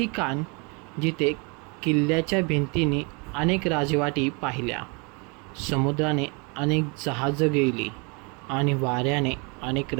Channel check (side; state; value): left; quieter; 31.7 dB